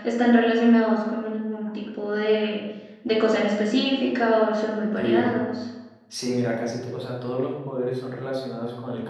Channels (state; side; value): identical; both; correlation 1.00